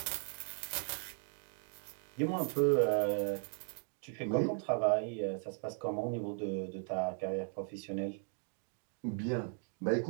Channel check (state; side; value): silent; left; 53 dB below the other